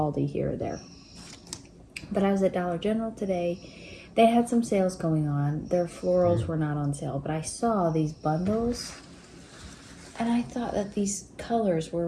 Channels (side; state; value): both; identical; correlation 1.00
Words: here or there. But I was at Dollar General today. They had some sales going on. Their florals were not on sale, but I saw these bundles, and I thought that these colors were